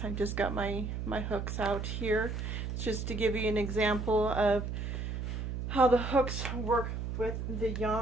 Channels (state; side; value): noise; right; hum, 4 dB below the sound